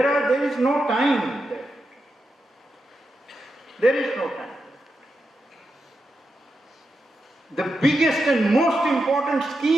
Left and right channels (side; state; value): both; normal; correlation 0.87